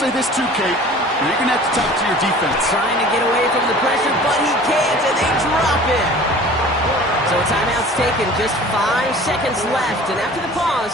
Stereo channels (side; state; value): both; normal; correlation 0.44